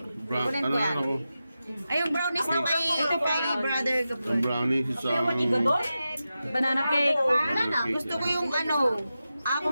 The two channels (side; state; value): both; inverted; correlation -0.92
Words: ako? Ay, yung brownies na kay brother Gabon. Ang brownie sa... Banana cake. Gusto ko yung ano,